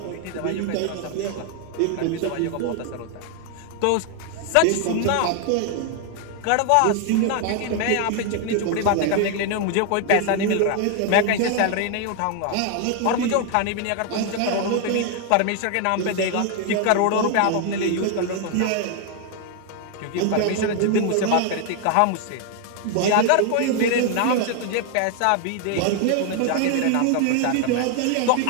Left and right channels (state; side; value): different; both; correlation 0.00